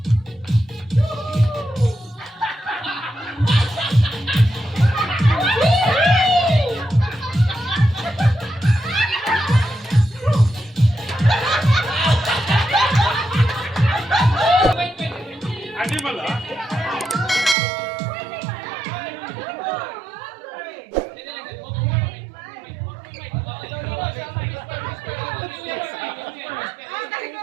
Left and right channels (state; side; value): drops out; left; at 17.6 s